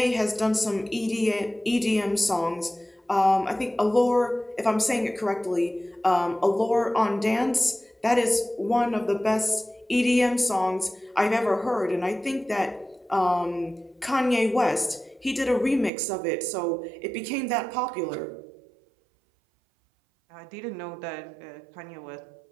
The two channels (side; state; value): left; drops out; at 15.9 s